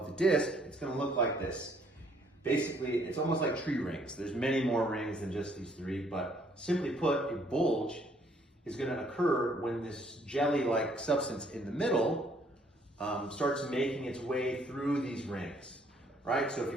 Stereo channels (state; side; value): normal; both; correlation 0.65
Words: the disc, it's going to look like this. Basically, it's almost like tree rings. There's many more rings than just these three, but simply put, a bulge is going to occur when this jelly-like substance in the middle starts making its way through these rings, right? So if